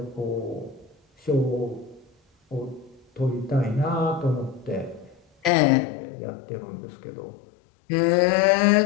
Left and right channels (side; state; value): right; drops out; at 5.5 s